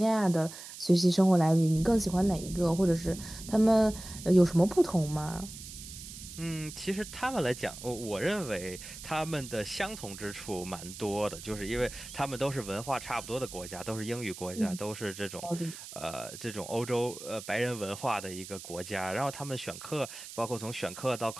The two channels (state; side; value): noise; right; hiss, 13 dB below the sound